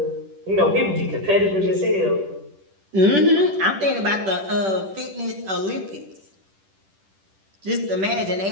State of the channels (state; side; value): late; left; 10 ms